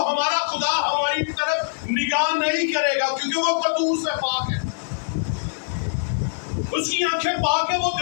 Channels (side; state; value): right; quieter; 34.2 dB